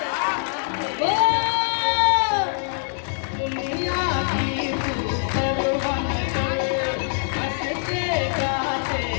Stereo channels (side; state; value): right; silent; 63 dB below the other